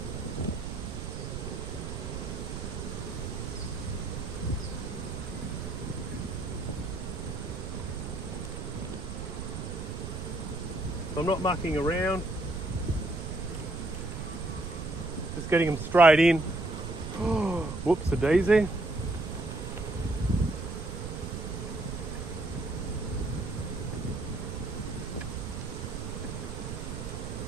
So I'm not mucking around. Just getting them straight in. Whoops, a daisy.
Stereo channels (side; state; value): right; noise; rumble, 6 dB below the sound